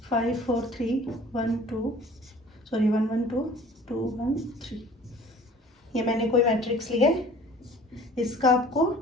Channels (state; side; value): normal; both; correlation 0.48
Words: 5 4 3 1 2 1 1 2 2 1 3। ये मैंने कोई मैट्रिक्स लिया है, इसका आपको